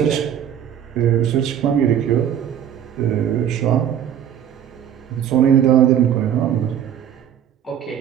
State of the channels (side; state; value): left; quieter; 9.6 dB